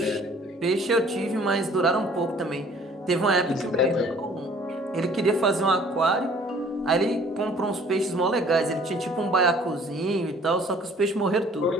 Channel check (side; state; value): both; normal; correlation 0.55